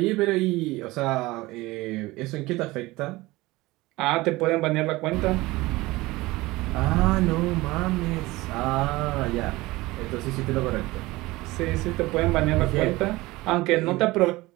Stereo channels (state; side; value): quieter; left; 20.2 dB